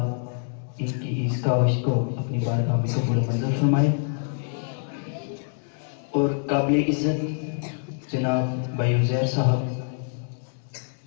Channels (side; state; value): right; silent; 61 dB below the other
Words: ان کی اس کاوش کو اپنی بارگاہ میں قبول و منظور فرمائے. اور قابل عزت جناب بھائی عزیر صاحب